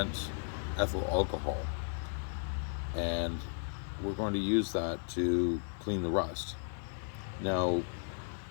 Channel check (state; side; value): silent; right; 54 dB below the other